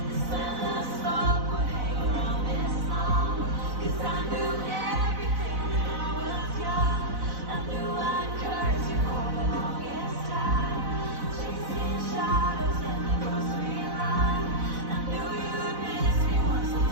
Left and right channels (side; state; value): left; late; 4.0 ms